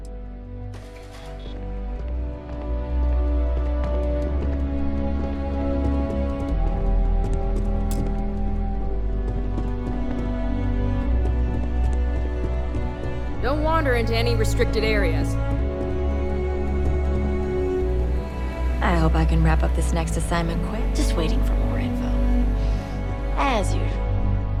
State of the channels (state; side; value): identical; both; correlation 1.00